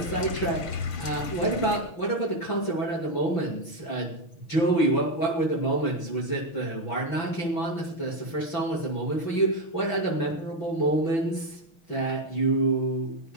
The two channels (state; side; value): late; right; 5.9 ms